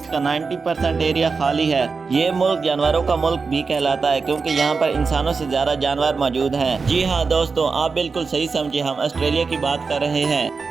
کا 90% ایریا خالی ہے۔ یہ ملک جانوروں کا ملک بھی کہلاتا ہے کیونکہ یہاں پر انسانوں سے زیادہ جانور موجود ہیں۔ جی ہاں دوستوں، آپ بالکل صحیح سمجھے، ہم آسٹریلیا کی بات کر رہے ہیں۔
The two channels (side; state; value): left; quieter; 4.7 dB